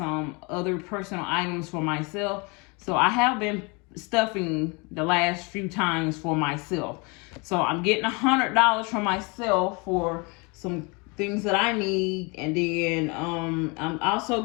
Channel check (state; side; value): quieter; right; 29.9 dB